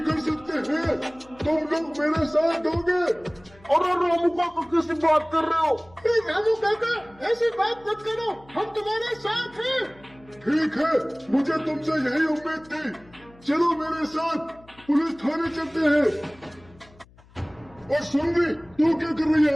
कर सकते हैं, तुम लोग मेरे साथ दोगे। और रामू काका किसी बात कर रहे हो? रामू काका ऐसी बात मत करो, हम तुम्हारे साथ हैं। ठीक है, मुझे तुमसे यही उम्मीद थी। चलो मेरे साथ पुलिस थाने चलते हैं। और सुन भी, तू क्या कर रही है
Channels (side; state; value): left; noise; hum, 26 dB below the sound